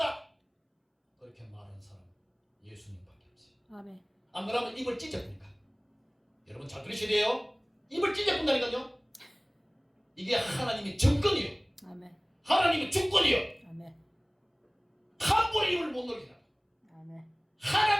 그렇게 말하는 사람 예수님밖에 없어요. 아멘. 안 그러면 입을 찢어보니까. 여러분 잘 들으셔야 돼요. 입을 찢어본다니까요. 이게 하나님의 정권이요. 아멘. 하나님의 주권이요. 아멘. 함부로 입을 못 놀리라. 아멘.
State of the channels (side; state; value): both; identical; correlation 1.00